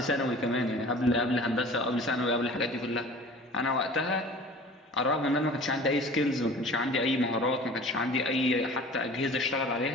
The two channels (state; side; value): normal; both; correlation 0.43